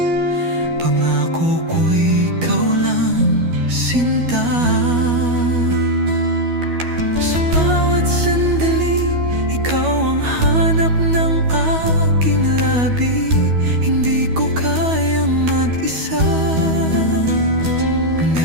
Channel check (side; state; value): left; late; 12 ms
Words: pangako ko'y ikaw lang, sinta. Sa bawat sandali, ikaw ang hanap ng aking labi. Hindi ko kayang mag-isa,